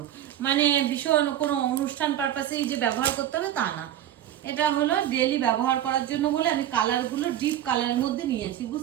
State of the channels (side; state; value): left; quieter; 11.6 dB